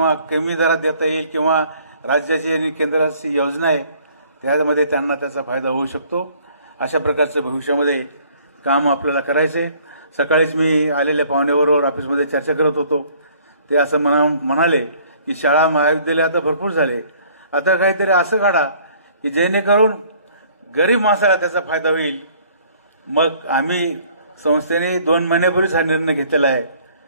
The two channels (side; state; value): both; inverted; correlation -0.57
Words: कमी दरात देता येईल किंवा राज्याची आणि केंद्राची योजना आहे त्यामध्ये त्यांना त्याचा फायदा होऊ शकतो. अशा प्रकारचं भविष्यामध्ये काम आपल्याला करायचं आहे. सकाळीच मी आलेल्या पाहुण्याबरोबर ऑफिसमध्ये चर्चा करत होतो. ते असं म्हणाले की शाळा महाविद्यालय आता भरपूर झाले, आता काहीतरी असं काढा की जेणेकरून गरीब माणसाला त्याचा फायदा होईल. मग आम्ही संस्थेने 2 महिन्यापूर्वीच हा निर्णय घेतलेला आहे